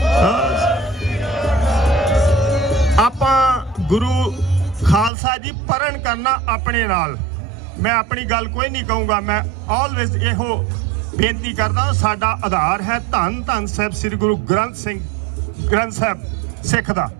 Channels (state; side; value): drops out; left; at 5.1 s